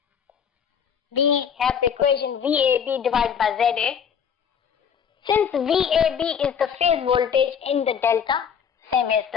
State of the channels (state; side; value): quieter; right; 7.5 dB